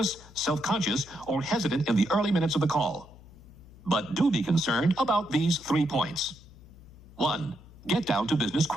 self-conscious, or hesitant in the early minutes of the call. But do be concerned about these 3 points. 1. Get down to business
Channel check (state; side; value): noise; left; hum, 21 dB below the sound